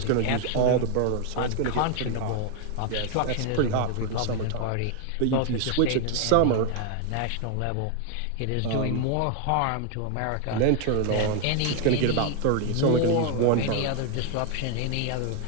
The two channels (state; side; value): different; both; correlation 0.00